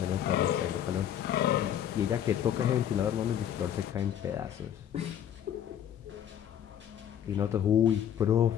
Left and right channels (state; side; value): quieter; right; 9.8 dB